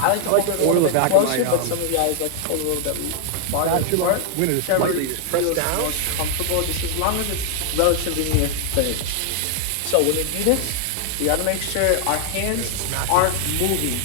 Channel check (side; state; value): both; different; correlation 0.00